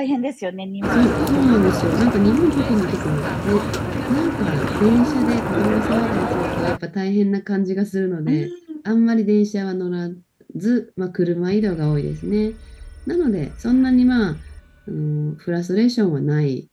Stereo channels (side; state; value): both; identical; correlation 1.00